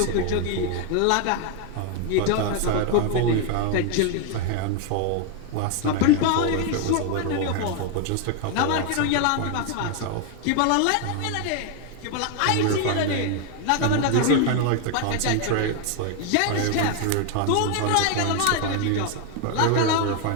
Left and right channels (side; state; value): both; different; correlation 0.01